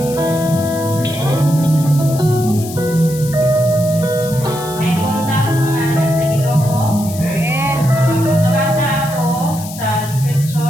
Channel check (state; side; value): noise; left; hiss, 13 dB below the sound